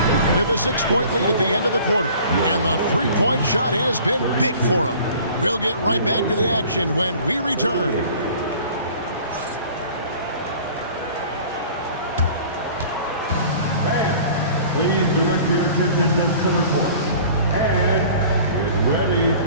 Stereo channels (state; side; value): inverted; both; correlation -0.47